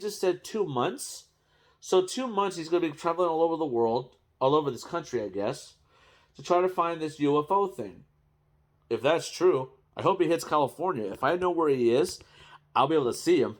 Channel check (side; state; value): both; identical; correlation 1.00